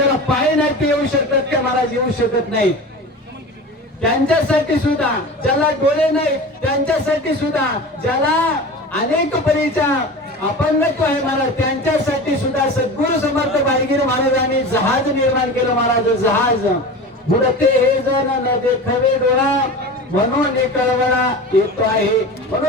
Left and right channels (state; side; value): normal; both; correlation 0.32